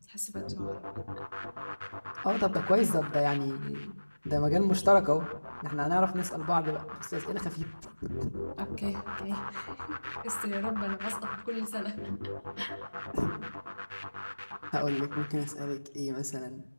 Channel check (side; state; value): both; inverted; correlation -1.00